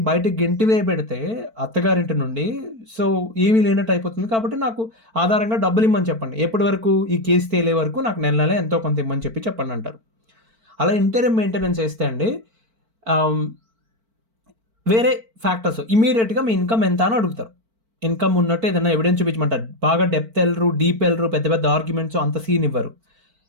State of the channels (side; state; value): left; late; 4.5 ms